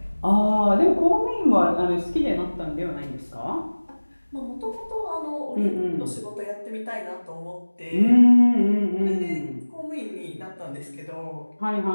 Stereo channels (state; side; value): inverted; both; correlation -1.00